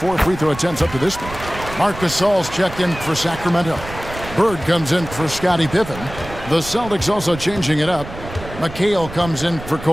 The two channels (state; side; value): noise; right; rumble, 13 dB below the sound